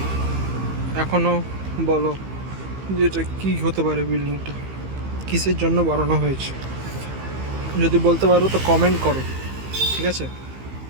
এখনও বলো যেটা কি হতে পারে, বিল্ডিংটা কিসের জন্য বানানো হয়েছে? যদি বলতে পারো তো কমেন্ট করো, ঠিক আছে?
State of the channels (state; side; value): late; left; 15 ms